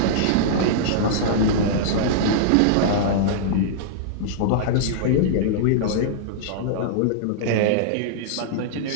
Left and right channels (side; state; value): both; different; correlation -0.02